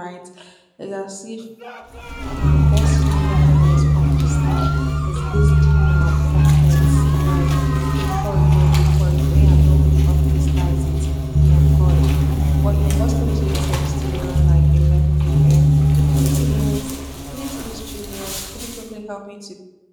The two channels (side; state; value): both; identical; correlation 1.00